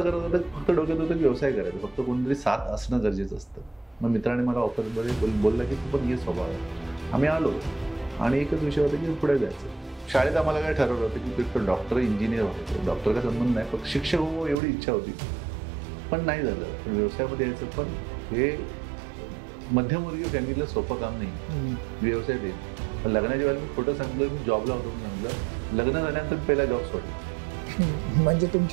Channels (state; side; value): drops out; left; at 14.6 s